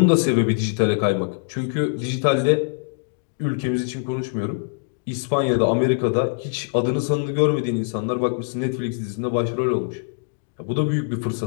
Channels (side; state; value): right; silent; digital silence